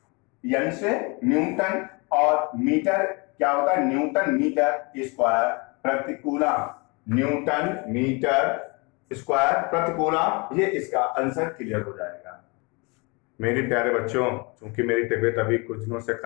n से न्यूटन, और मीटर क्या होता है, न्यूटन मीटर स्क्वायर प्रति कूलम, न्यूटन मीटर स्क्वायर प्रति कूलम। ये इसका आंसर क्लियर हो जाएगा। मेरे प्यारे बच्चों, चूंकि मेरी तबीयत अभी कुछ दिनों से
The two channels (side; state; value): right; quieter; 29.3 dB